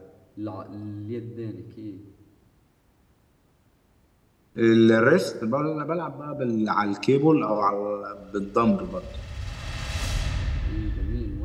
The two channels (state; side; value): identical; both; correlation 1.00